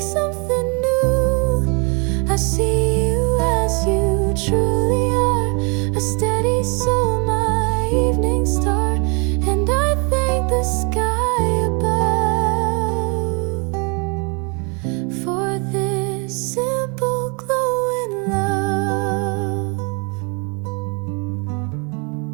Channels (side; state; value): left; quieter; 33.6 dB